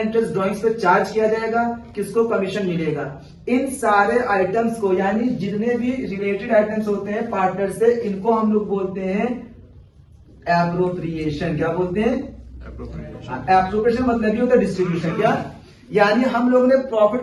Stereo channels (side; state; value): both; identical; correlation 1.00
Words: ड्रॉइंग्स पे चार्ज किया जाएगा, किसको कमीशन मिलेगा। इन सारे आइटम्स को, यानी जितने भी रिलेटेड आइटम्स होते हैं पार्टनर से, इनको हम लोग बोलते हैं एप्रोप्रिएशन। क्या बोलते हैं? एप्रोप्रिएशन मतलब ही होता है डिस्ट्रीब्यूशन। क्या? यानी हम लोगों ने प्रॉफिट